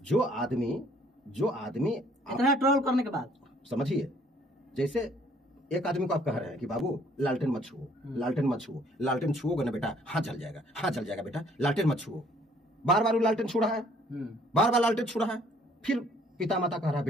आदमी इतना ट्रोल करने के बाद, समझिए, जैसे एक आदमी को आप कह रहे हैं कि बाबू लालटेन मत छुओ, लालटेन मत छुओ, लालटेन छुओगे ना बेटा हाथ जल जाएगा, हाथ जल जाएगा बेटा, लालटेन मत छुओ। बार बार वो लालटेन छू रहा है, बार बार लालटेन छू रहा है, फिर पिता माता कह रहा है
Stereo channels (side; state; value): both; normal; correlation 0.61